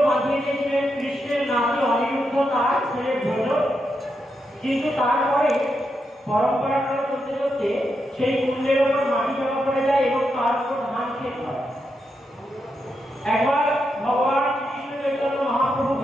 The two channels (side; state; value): both; normal; correlation 0.84